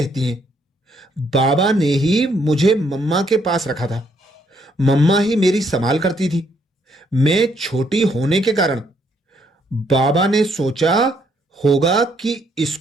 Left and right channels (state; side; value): normal; both; correlation 0.71